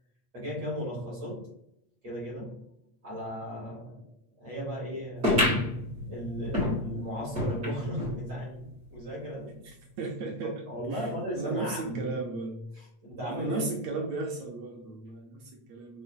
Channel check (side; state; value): left; late; 8.5 ms